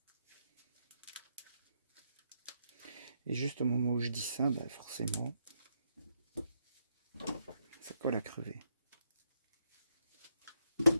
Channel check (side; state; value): both; inverted; correlation -0.79